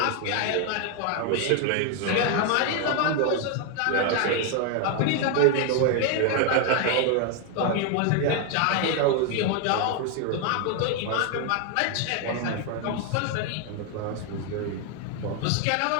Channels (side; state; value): both; different; correlation 0.01